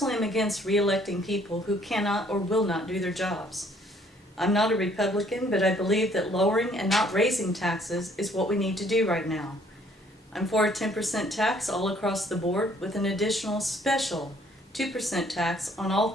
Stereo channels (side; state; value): both; normal; correlation 0.62